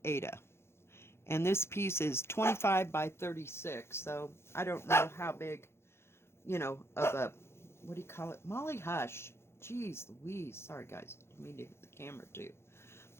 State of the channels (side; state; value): right; late; 0.12 ms